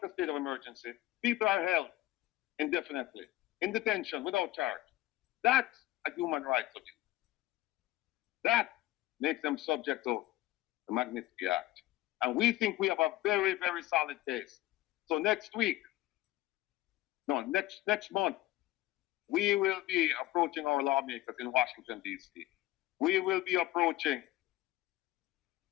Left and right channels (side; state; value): right; quieter; 16.5 dB